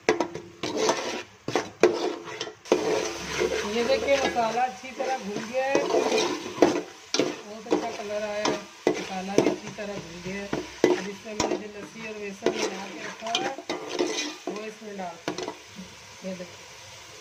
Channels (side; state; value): both; identical; correlation 1.00